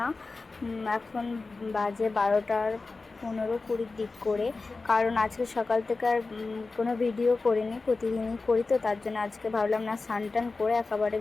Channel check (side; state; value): right; quieter; 3.8 dB